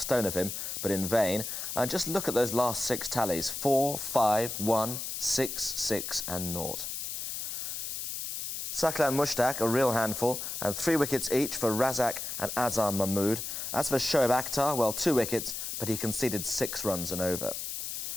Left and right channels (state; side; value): noise; left; hiss, 5 dB below the sound